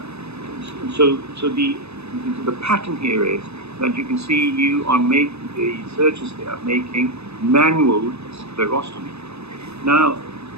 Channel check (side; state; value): left; late; 0.79 ms